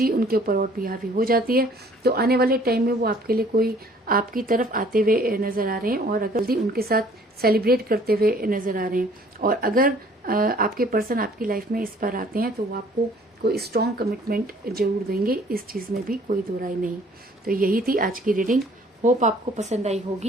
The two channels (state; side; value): normal; both; correlation 0.56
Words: उनके ऊपर और भी हावी हो जाती है तो आने वाले टाइम में वो आपके लिए कोई आपकी तरफ आते हुए नजर आ रहे हैं और अगर जल्दी उनके साथ सेलिब्रेट करते हुए नजर आ रहे हैं। और अगर आपके पर्सन आपकी लाइफ में इस पर आते हैं तो वो आपको कोई स्ट्रॉन्ग कमिटमेंट जरूर देंगे। इस चीज में भी कोई दो राय नहीं। तो यही थी आज की रीडिंग। होप आपको पसंद आई